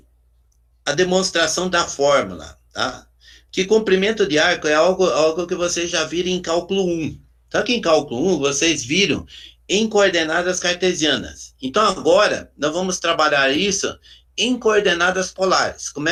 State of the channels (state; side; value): identical; both; correlation 1.00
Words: a demonstração da fórmula, tá? Que comprimento de arco é algo que vocês já viram em cálculo 1. Só que em cálculo 1 vocês viram em coordenadas cartesianas. Então agora nós vamos trabalhar isso em coordenadas polares. Como